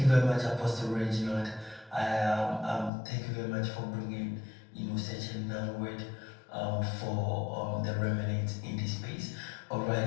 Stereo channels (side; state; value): right; drops out; at 2.9 s